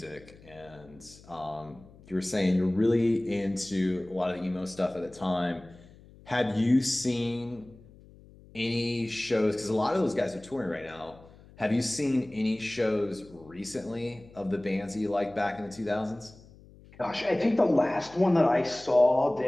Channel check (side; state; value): left; noise; hum, 23 dB below the sound